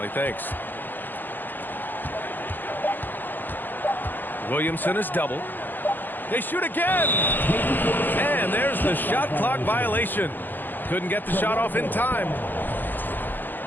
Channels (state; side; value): late; right; 0.088 ms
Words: Thanks. Williamson is double. They shoot again! And there's the shot clock violation. Couldn't get the shot off in time.